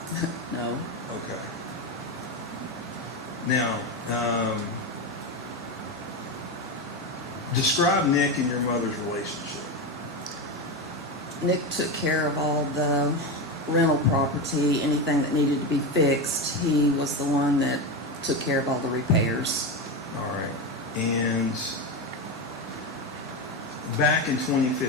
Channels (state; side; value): normal; both; correlation 0.16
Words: No. Okay. Now, describe Nick and your mother's relationship. Nick took care of all the rental property, anything that needed to be fixed. He was the one that took care of all the repairs. All right. And back in